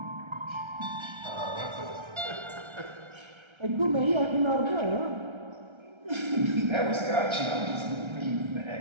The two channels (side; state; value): left; late; 1.3 ms